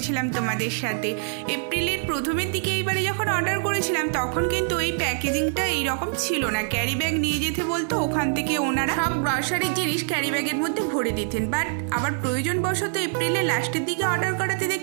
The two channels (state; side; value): silent; left; digital silence